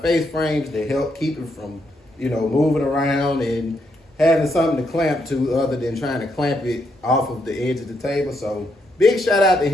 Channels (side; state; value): both; normal; correlation 0.78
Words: frames to help keep it from, moving around and having something to clamp to other than trying to clamp it off of the edge of the table. So big shout out to